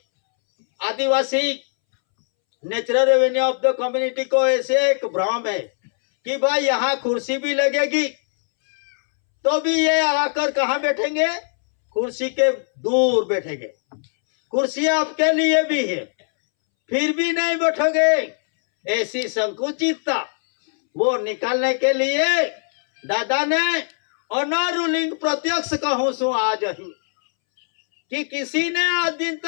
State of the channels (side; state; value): right; silent; 65 dB below the other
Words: आदिवासी natural revenue of the community को ऐसे एक भ्रम है कि भाई यहाँ कुर्सी भी लगेगी, तो भी ये आकर कहाँ बैठेंगे? कुर्सी के दूर बैठेंगे। कुर्सी आपके लिए भी है, फिर भी नहीं बैठोगे। ऐसी संकुचितता वो निकालने के लिए दादा ने ऑनर रूलिंग प्रत्यक्ष कहूं सु आज ही, कि किसी ने आज दिन